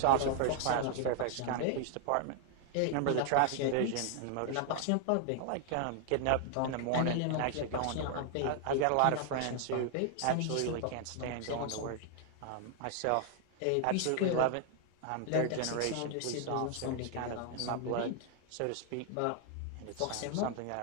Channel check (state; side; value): different; both; correlation 0.00